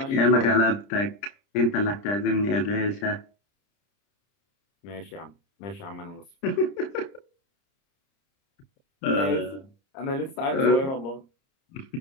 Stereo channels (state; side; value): late; right; 30 ms